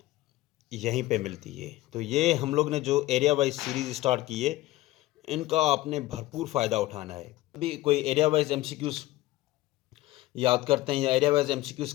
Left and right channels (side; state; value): right; quieter; 17.5 dB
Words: यहीं पे मिलती है। तो ये हम लोग ने जो एरिया वाइज सीरीज़ स्टार्ट की है इनका आपने भरपूर फ़ायदा उठाना है। अभी कोई एरिया वाइज MCQs याद करते हैं या एरिया वाइज MCQs